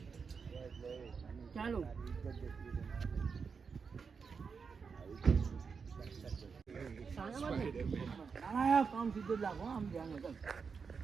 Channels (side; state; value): left; quieter; 5.6 dB